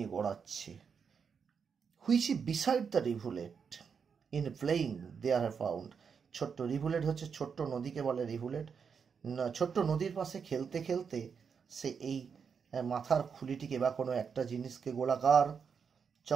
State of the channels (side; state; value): left; quieter; 6.3 dB